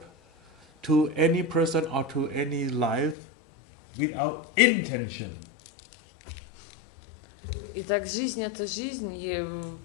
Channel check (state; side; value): drops out; right; at 3.2 s